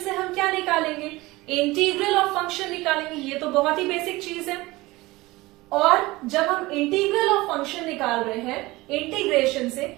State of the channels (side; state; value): left; quieter; 20.6 dB